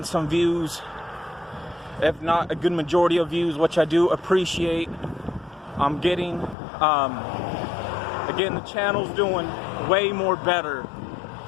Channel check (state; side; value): drops out; right; at 6.6 s